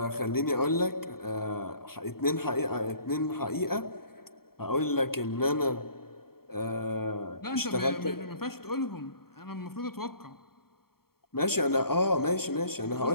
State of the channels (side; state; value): right; late; 0.94 ms